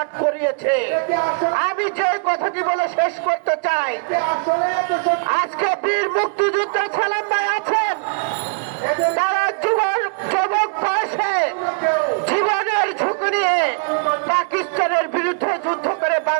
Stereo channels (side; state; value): left; quieter; 37.5 dB